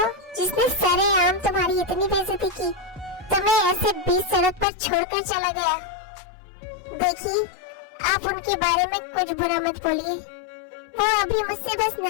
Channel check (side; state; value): right; drops out; at 4.7 s